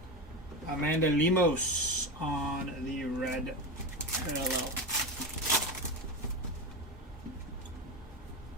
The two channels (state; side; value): normal; both; correlation 0.18